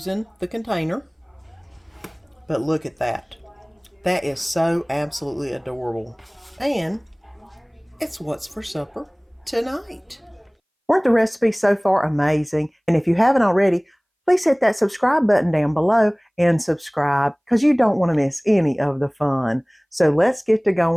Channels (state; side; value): identical; both; correlation 1.00